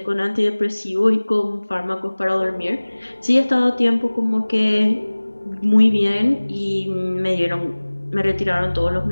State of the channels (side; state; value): both; inverted; correlation -1.00